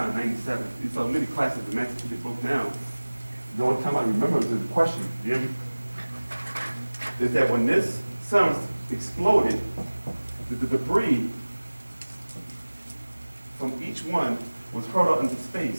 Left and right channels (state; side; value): inverted; both; correlation -1.00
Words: in 97. You saw many classes the master teacher broke down. The only time I remember is the question, you hear me? Is that when this sun exploded, the debris from each one was hurled out into